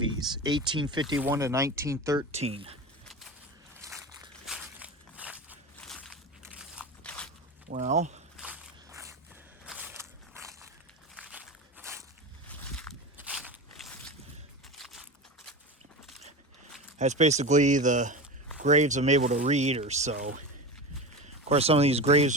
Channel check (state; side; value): normal; both; correlation 0.26